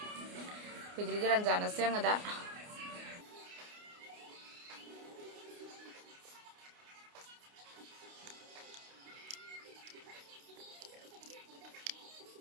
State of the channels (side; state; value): left; late; 29 ms